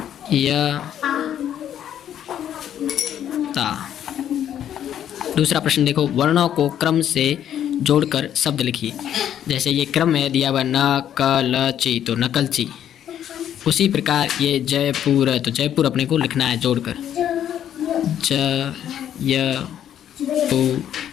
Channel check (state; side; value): quieter; right; 10.2 dB